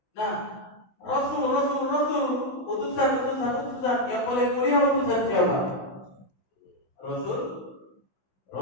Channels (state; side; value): late; right; 16 ms